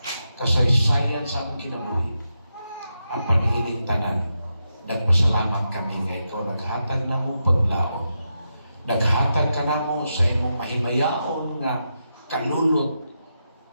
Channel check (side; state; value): both; inverted; correlation -0.86